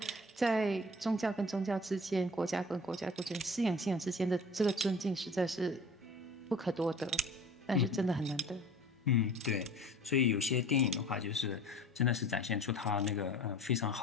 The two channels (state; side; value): normal; both; correlation 0.43